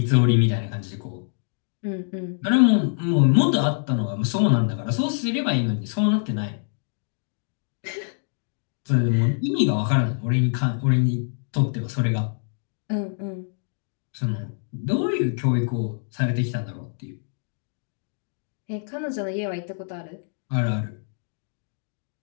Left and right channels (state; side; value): silent; right; digital silence